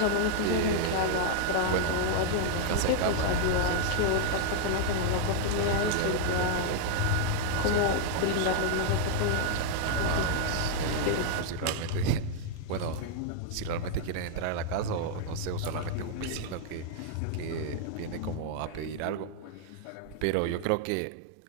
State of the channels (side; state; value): both; different; correlation -0.01